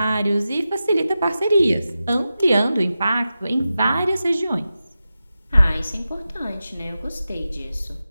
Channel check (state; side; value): inverted; both; correlation -0.92